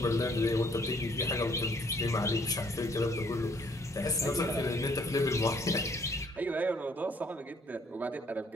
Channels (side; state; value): both; normal; correlation 0.63